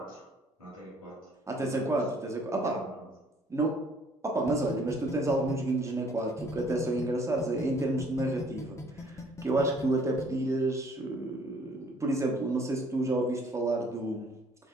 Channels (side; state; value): both; normal; correlation 0.60